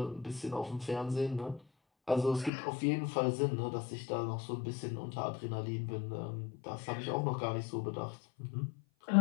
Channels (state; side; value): drops out; right; at 2.5 s